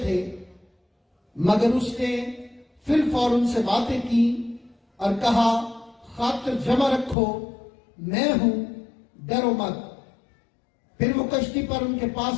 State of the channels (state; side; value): drops out; right; at 7.2 s